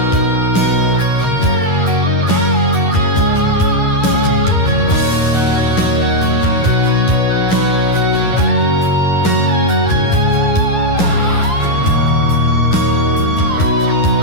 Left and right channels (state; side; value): late; right; 11 ms